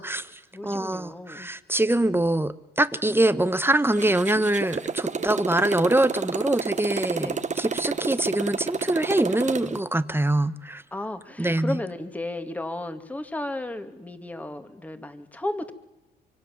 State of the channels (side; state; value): both; normal; correlation 0.78